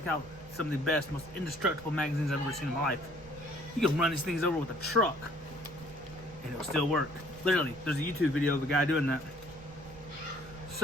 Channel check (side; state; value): right; noise; rumble, 18 dB below the sound